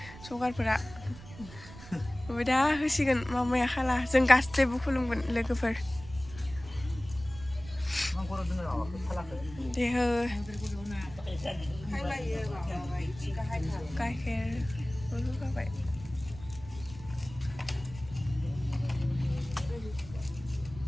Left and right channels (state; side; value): noise; right; rumble, 16 dB below the sound